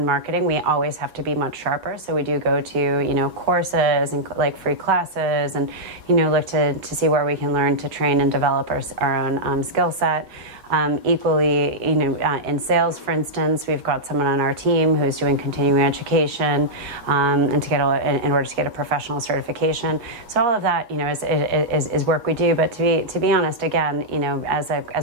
marketing, we always have to be much sharper. So we do go to, you know, courses and like free classes and, you know, look to see where we can learn to train and develop our own skill set. Equally, you know, in sales, for instance, we've got someone on our team who's doing continuing education and to get in order to get a professional certification. So all of that, you know, is work we do. But to be honest, again, you know, as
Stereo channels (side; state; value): left; late; 8.4 ms